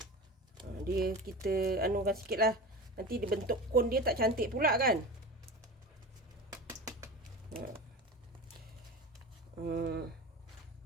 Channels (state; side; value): normal; both; correlation 0.30